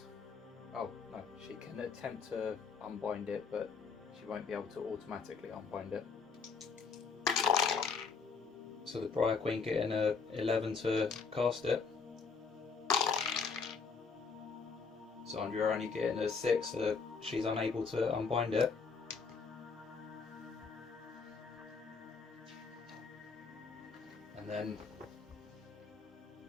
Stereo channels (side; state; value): right; quieter; 5.1 dB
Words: Oh, no, she can attempt to unbind it, but she won't be able to automatically unbind it. So the Briar Queen getting a 11 to cast it. Xandria only getting a 6, so she's unable to unbind it. And then,